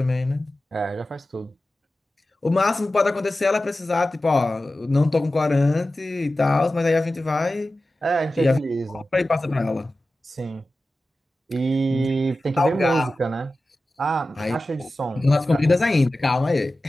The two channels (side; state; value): both; normal; correlation 0.94